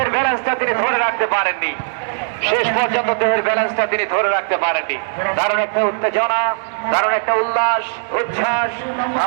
ব্যালেন্সটা তিনি ধরে রাখতে পারেননি। দারুণ একটা উত্তেজনা, দারুণ একটা উল্লাস উচ্ছ্বাস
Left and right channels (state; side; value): silent; left; digital silence